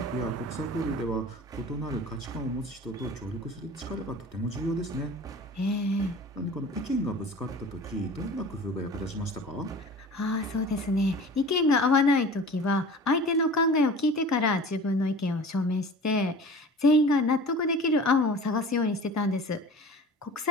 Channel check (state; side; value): normal; both; correlation 0.40